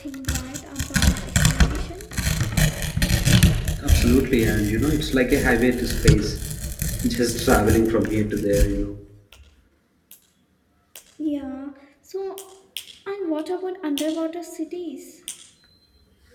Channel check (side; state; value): both; identical; correlation 1.00